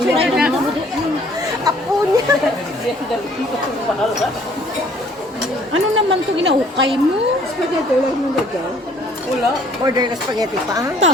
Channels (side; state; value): both; normal; correlation 0.59